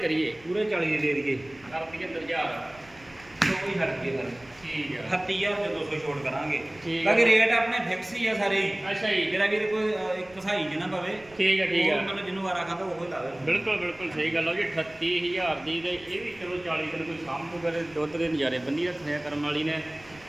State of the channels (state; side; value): noise; right; rumble, 25 dB below the sound